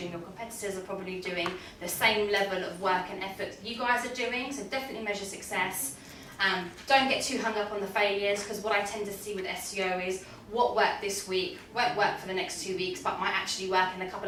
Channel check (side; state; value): both; identical; correlation 1.00